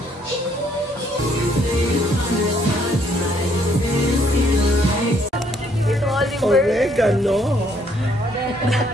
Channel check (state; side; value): normal; both; correlation 0.67